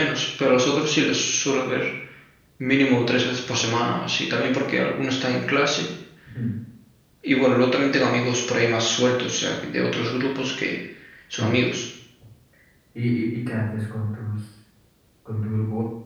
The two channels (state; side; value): identical; both; correlation 1.00